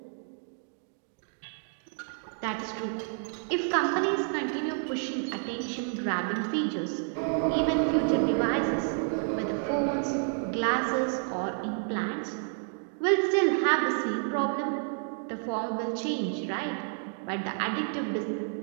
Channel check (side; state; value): left; silent; 58 dB below the other